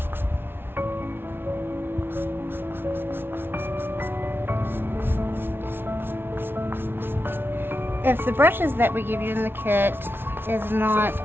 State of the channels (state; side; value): late; left; 0.11 ms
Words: If the brushes that we give you in the kit is not